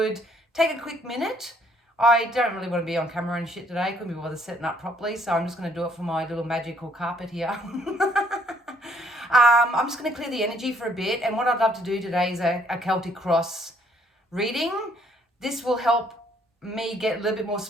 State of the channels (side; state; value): both; normal; correlation 0.65